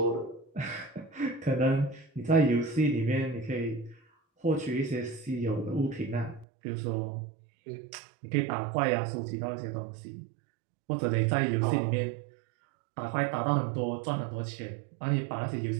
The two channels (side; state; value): left; drops out; at 6.5 s